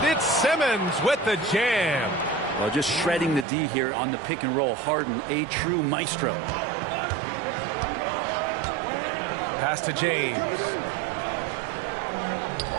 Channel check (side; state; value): left; drops out; at 3.5 s